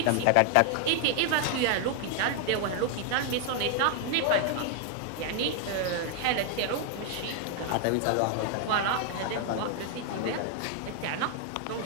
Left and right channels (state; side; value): different; both; correlation 0.00